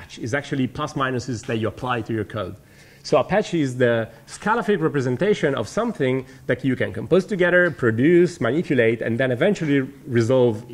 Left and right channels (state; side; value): identical; both; correlation 1.00